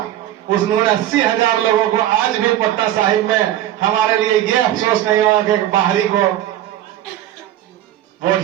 उन्होंने 80,000 लोगों को आज भी पटना साहिब में हमारे लिए ये अफसोस नहीं होगा कि बाहरी को वोट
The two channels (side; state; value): left; quieter; 12.7 dB